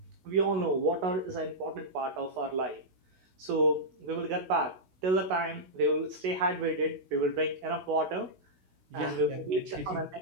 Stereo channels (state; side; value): late; left; 16 ms